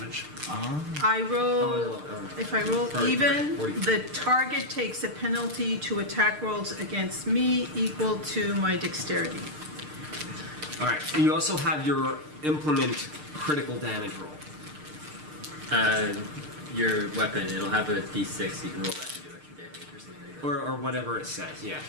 I roll, Oh, if I roll Sorry, even, 40. the target takes a penalty to attack rolls against me equal to my dexterity. All right. You also have your implement critical damage roll. Your weapon, it'll have a d6. You can roll that to do extra damage or something like that. Or whatever it says, yeah.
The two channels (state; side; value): late; left; 6.6 ms